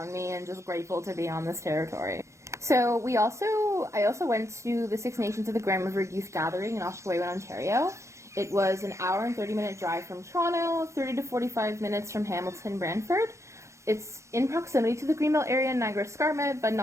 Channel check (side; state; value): left; late; 0.14 ms